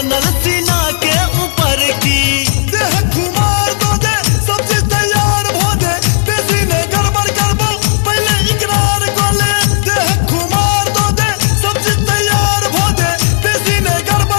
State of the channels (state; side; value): silent; right; 68 dB below the other